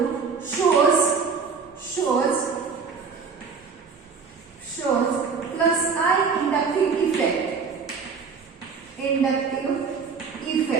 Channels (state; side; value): quieter; left; 5.5 dB